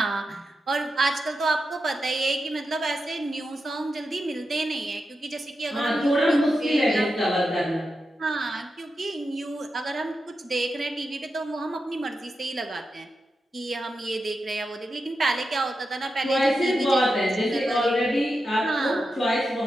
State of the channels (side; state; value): both; normal; correlation 0.88